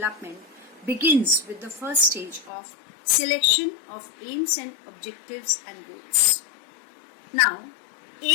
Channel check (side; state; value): right; drops out; at 2.5 s